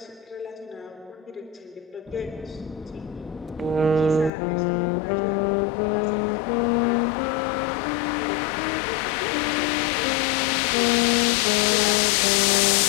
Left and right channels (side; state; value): right; drops out; at 4.3 s